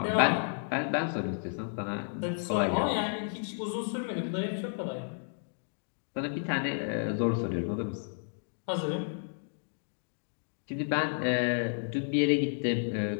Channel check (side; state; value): right; silent; digital silence